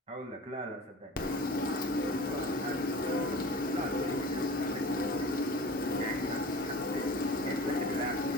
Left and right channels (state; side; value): normal; both; correlation 0.39